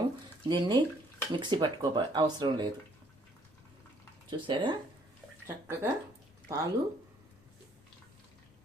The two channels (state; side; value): noise; left; rumble, 29 dB below the sound